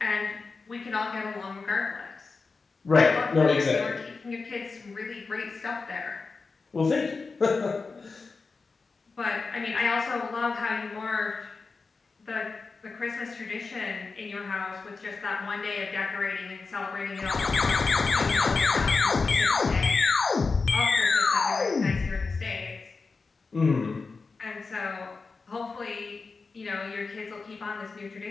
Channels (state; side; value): quieter; right; 4.3 dB